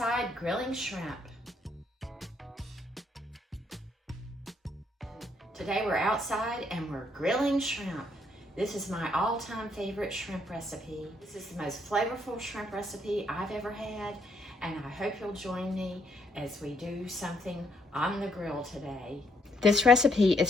grilling shrimp. Today we're outside and we're grilling shrimp. This is my all-time favorite shrimp recipe. This is the most flavorful shrimp recipe I've ever had, and I hope you'll join me as we do something on the grill today. This recipe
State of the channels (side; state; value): both; normal; correlation 0.72